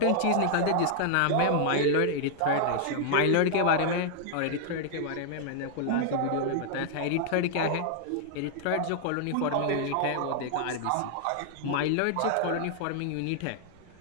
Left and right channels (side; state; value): both; different; correlation -0.01